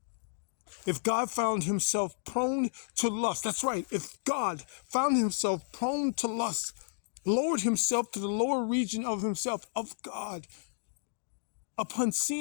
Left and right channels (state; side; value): silent; right; digital silence